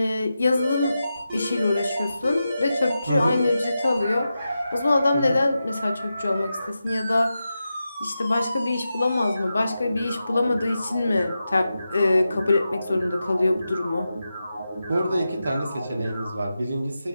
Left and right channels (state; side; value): inverted; both; correlation -0.90